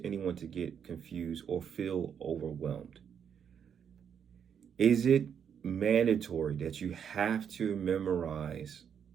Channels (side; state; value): left; quieter; 7.9 dB